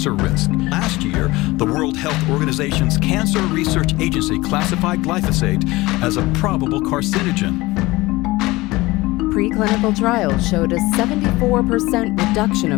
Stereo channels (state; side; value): quieter; right; 20.4 dB